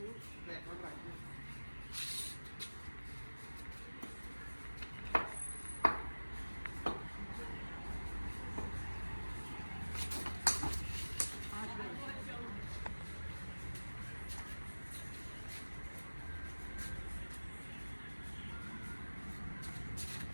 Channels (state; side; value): inverted; both; correlation -1.00